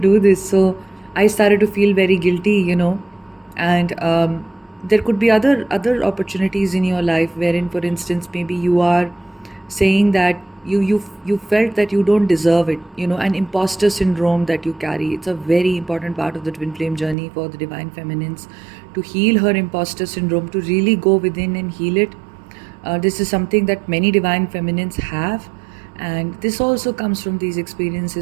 this. So I started to feel very guilty, and there could be other opportunities in your life wherein, for instance, maybe you are saying that you felt that you don't deserve it, an imposter syndrome that you carry. It's a very important part of the twin flame journey for the divine feminines, to heal her imposter syndrome, to really go within and heal it. This is something that many divine feminines have, and this also comes from these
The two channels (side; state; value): left; drops out; at 17.2 s